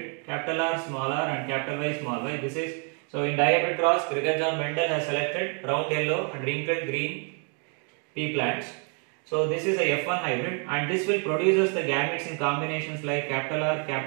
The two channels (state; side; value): quieter; left; 39.8 dB